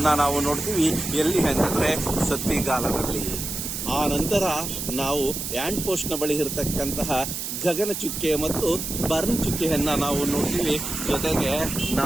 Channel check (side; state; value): right; noise; hiss, 5 dB below the sound